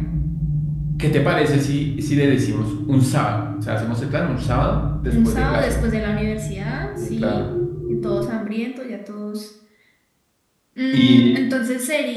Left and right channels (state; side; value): identical; both; correlation 1.00